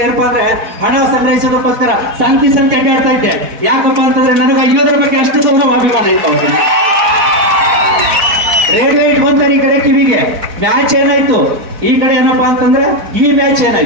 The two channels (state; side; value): late; left; 4.0 ms